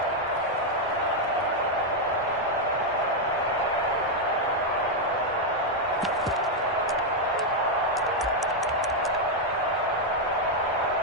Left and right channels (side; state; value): both; normal; correlation 0.00